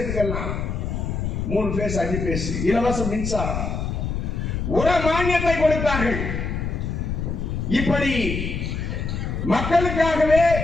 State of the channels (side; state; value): left; noise; rumble, 3 dB below the sound